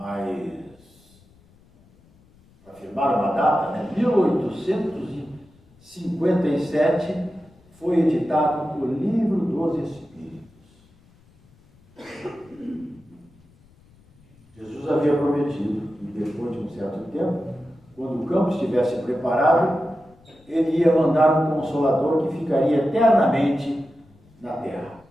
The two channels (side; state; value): left; noise; rumble, 29 dB below the sound